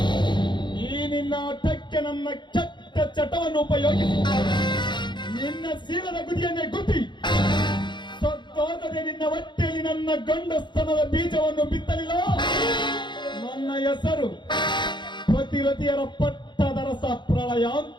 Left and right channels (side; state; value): right; late; 0.22 ms